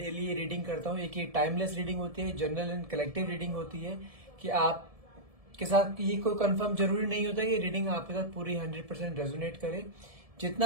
रीडिंग करता हूँ, एक ही टाइमलेस रीडिंग होती है, जनरल एंड कलेक्टिव रीडिंग होती है कि आप के साथ ये कोई कंफर्म जरूरी नहीं होता कि रीडिंग आपके साथ पूरी 100% रेजोनेट करे।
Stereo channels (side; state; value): left; late; 1.7 ms